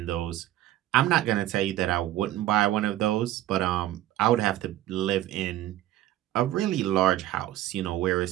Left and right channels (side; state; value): left; quieter; 14.0 dB